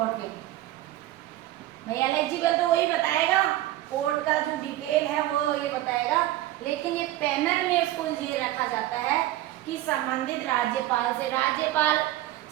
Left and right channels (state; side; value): quieter; left; 15.1 dB